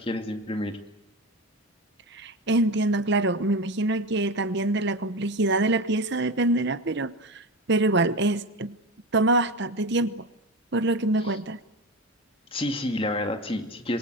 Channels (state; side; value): normal; both; correlation 0.23